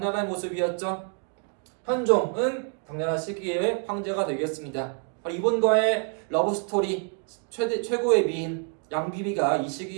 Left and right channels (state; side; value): quieter; left; 39.9 dB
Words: 모습이었죠? 현종은 당나라 시기의 황제가 되겠습니다. 이분과의 러브스토리 최고의 미인 양비비가 이